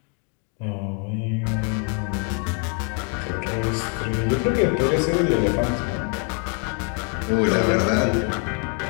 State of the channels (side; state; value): right; quieter; 38.4 dB